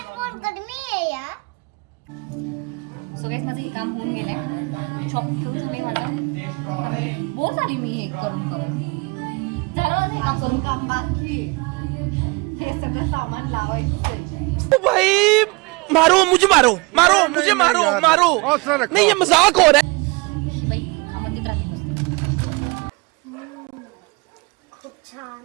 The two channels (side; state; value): left; quieter; 27.5 dB